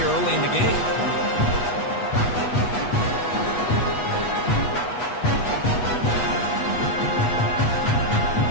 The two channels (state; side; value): late; right; 8.2 ms